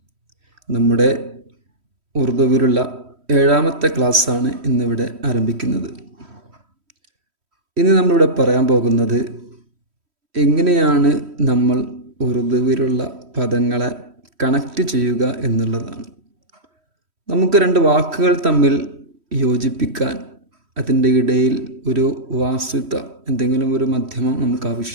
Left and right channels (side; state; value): left; late; 3.1 ms